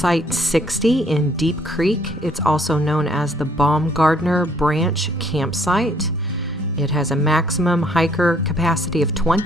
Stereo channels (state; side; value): normal; both; correlation 0.64